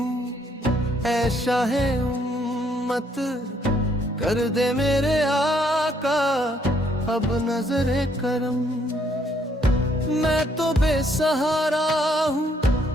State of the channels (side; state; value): both; normal; correlation 0.69